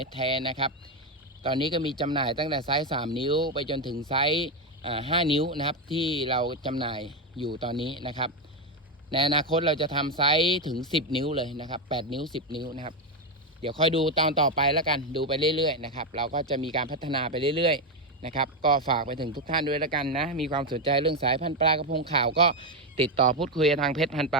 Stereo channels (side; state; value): both; normal; correlation 0.08